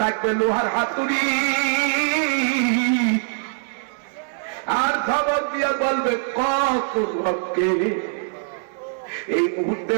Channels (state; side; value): silent; left; 64 dB below the other